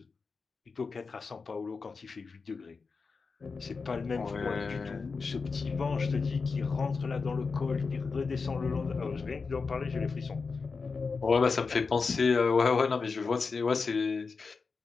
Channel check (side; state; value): right; quieter; 4.7 dB